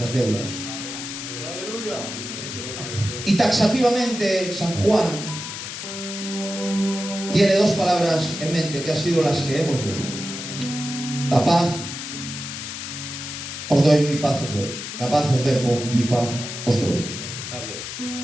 deudas. Y taxativamente San Juan tiene dos palabras en mente que han sido las que hemos leído. La paz os doy, mi paz os doy. La paz os dejo, mi paz os doy.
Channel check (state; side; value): noise; left; hiss, 7 dB below the sound